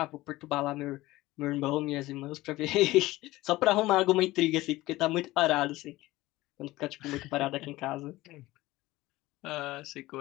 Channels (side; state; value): right; quieter; 18.3 dB